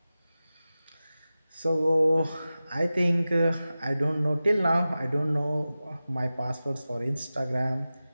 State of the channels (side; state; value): both; inverted; correlation -0.95